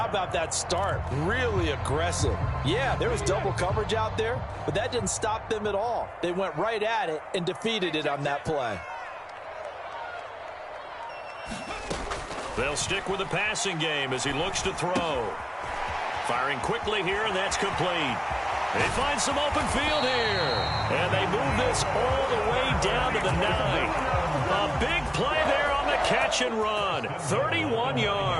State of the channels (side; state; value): both; identical; correlation 1.00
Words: about that start? Really aggressive. Yeah, there was double coverage out there, but that didn't stop them at all. They went right at it and defeated it on that play. They'll stick with the passing game as he looks to throw. Firing quickly here, and that's complete. They find some open field here. And they move this all the way down to the 9. A big play there on the catch and run. 31